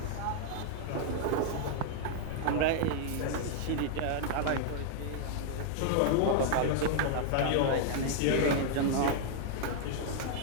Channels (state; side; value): different; both; correlation -0.01